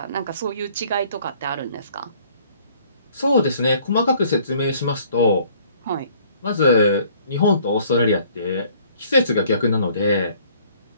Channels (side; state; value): both; inverted; correlation -0.58